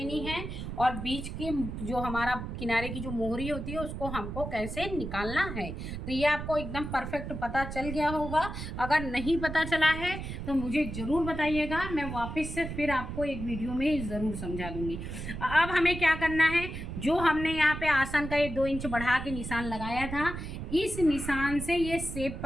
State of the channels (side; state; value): right; noise; rumble, 7 dB below the sound